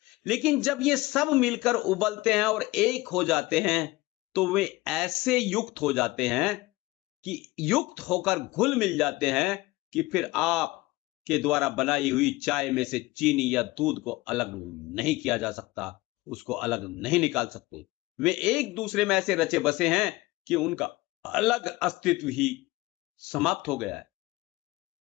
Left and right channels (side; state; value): right; quieter; 20.1 dB